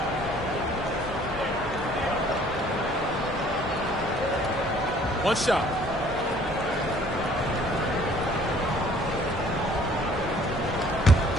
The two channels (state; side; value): normal; both; correlation 0.56